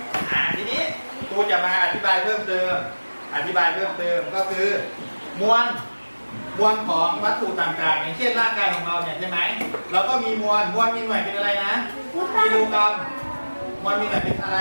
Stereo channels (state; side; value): inverted; both; correlation -1.00